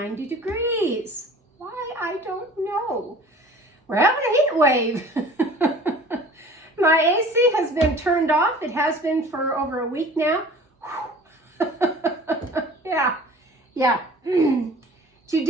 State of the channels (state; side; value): normal; both; correlation 0.45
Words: degrees. Why? I don't know. We're having a heat wave. My AC has been turned off. It has been for over a week now. Yeah.